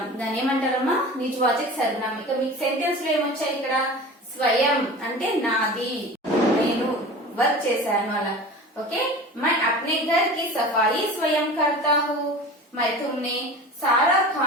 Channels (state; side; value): normal; both; correlation 0.36